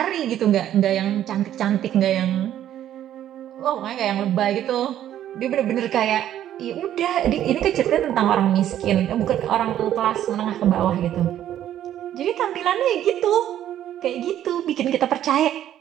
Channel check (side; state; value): left; quieter; 11.5 dB